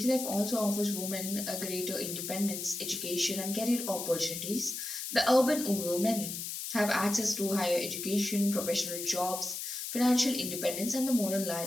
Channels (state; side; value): noise; left; hiss, 5 dB below the sound